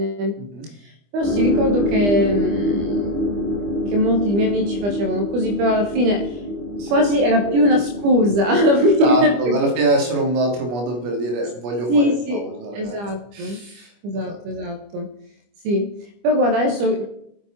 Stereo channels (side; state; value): left; late; 25 ms